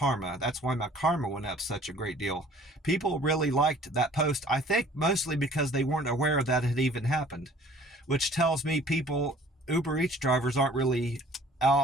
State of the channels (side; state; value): both; normal; correlation 0.52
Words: That's why my Karma went up such a great deal. People really liked that post, I think mostly because they weren't aware that it had even happened, which tells me Uber Eats drivers aren't really